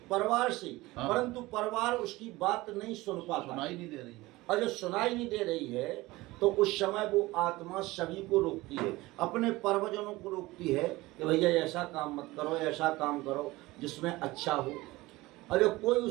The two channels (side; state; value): left; quieter; 19.9 dB